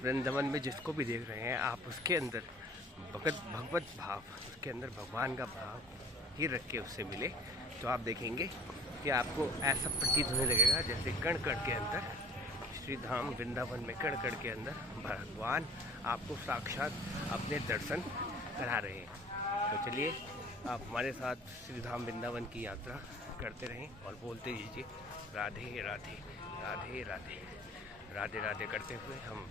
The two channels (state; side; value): normal; both; correlation 0.48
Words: वृंदावन में जिसको भी देख रहे हैं आप उसके अंदर भगवत भाव, उसके अंदर भगवान का भाव ही रख के उससे मिले तो आप देखेंगे कि आपको ऐसा प्रतीत होने लगेगा जैसे कण कण के अंदर श्री धाम वृंदावन में कण कण के अंदर भगवान आपको साक्षात अपने दर्शन करा रहे हैं। तो चलिए आप हमारे साथ श्री धाम वृंदावन की यात्रा करते रहें और बोलते दीजिए राधे राधे राधे राधे राधे राधे करते हुए हम